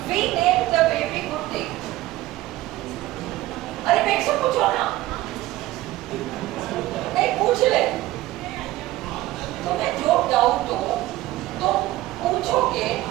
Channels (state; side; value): quieter; left; 16.5 dB